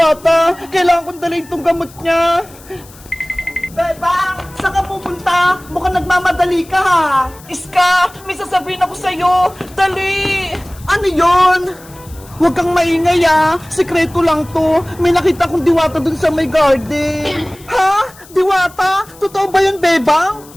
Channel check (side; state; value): left; noise; hiss, 23 dB below the sound